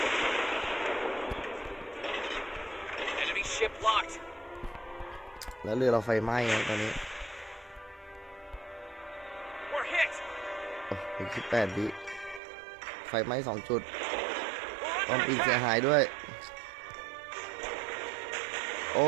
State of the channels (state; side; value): drops out; left; at 12.4 s